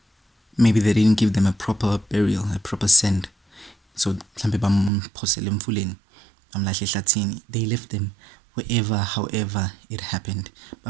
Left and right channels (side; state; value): left; drops out; at 4.9 s